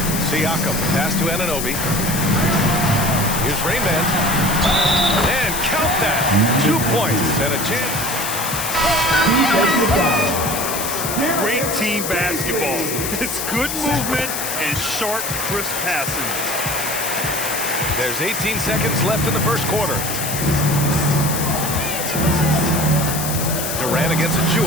Siakam. Pass to Anunoby. Here's Rainman. And count that. 2 points and a chance. Great team basketball. It's good movement and sharp, crisp passing. There's 18 seconds left in the first quarter. Durant against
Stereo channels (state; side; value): noise; left; hiss, 4 dB below the sound